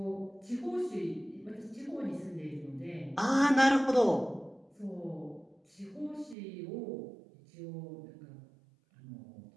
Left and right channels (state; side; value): drops out; left; at 6.4 s